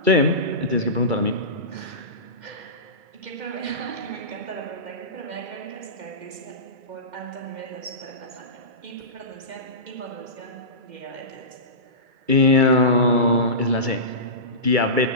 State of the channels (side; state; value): left; late; 2.3 ms